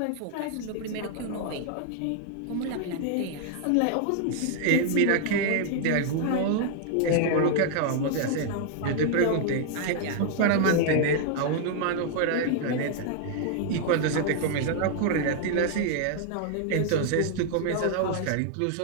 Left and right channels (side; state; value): both; different; correlation 0.00